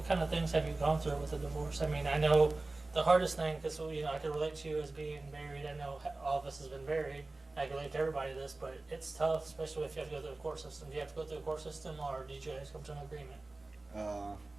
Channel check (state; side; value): quieter; left; 3.1 dB